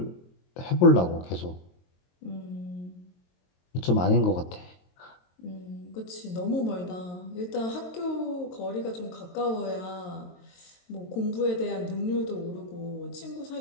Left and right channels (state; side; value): late; right; 22 ms